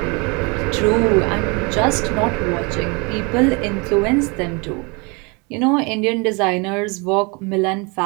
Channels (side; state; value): left; quieter; 29.9 dB